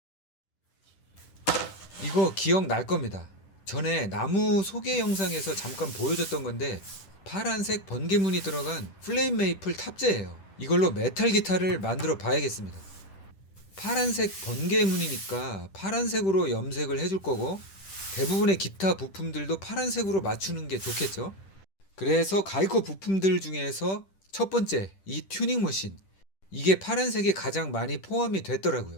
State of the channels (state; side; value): late; right; 10 ms